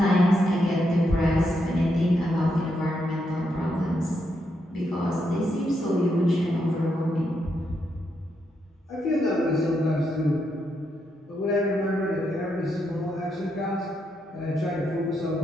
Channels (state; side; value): normal; both; correlation 0.81